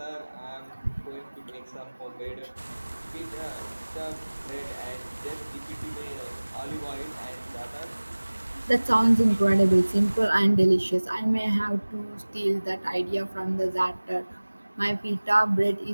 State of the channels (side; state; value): both; inverted; correlation -1.00